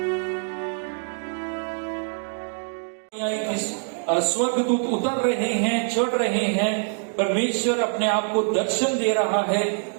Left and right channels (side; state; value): left; silent; 56 dB below the other